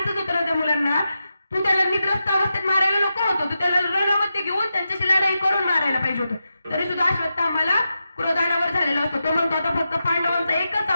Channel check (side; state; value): both; inverted; correlation -0.89